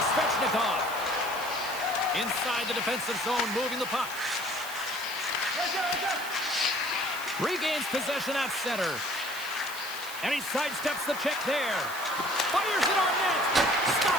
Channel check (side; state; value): right; noise; hiss, 12 dB below the sound